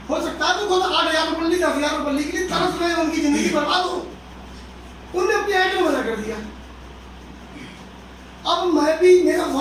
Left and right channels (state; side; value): identical; both; correlation 1.00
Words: हो सकता है तो खुद 8,000 रुपये 10,000 रुपये के लिए तरस रहे हो, उनकी जिंदगी बर्बाद हो। उनने अपने आइटम मना कर दिया। अब मैं भी, मेरा